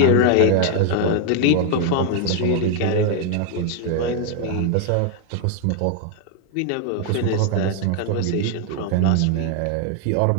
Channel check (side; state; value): both; different; correlation 0.00